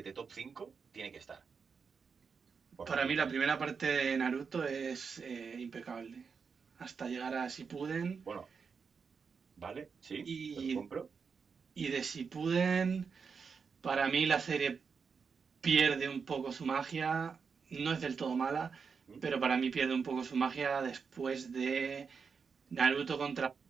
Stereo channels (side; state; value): left; quieter; 5.7 dB